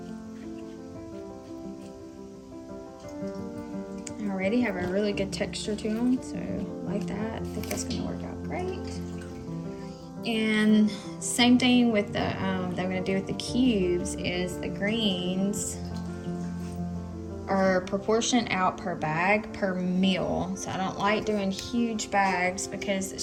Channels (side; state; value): both; identical; correlation 1.00